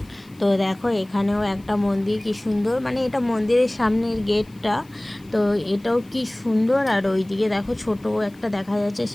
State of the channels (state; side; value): noise; left; hiss, 30 dB below the sound